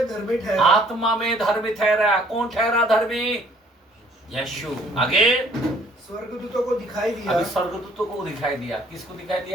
धर्मी ठहरा। आत्मा में धर्मी ठहरा। कौन ठहरा धर्मी? यीशु। आगे, स्वर्गदूतों को दिखाई दिया। अभी स्वर्गदूतों को दिखाई दिया। किसको दिखाई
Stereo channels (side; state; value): both; normal; correlation 0.59